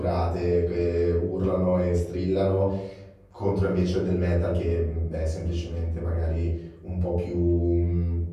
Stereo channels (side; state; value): both; identical; correlation 1.00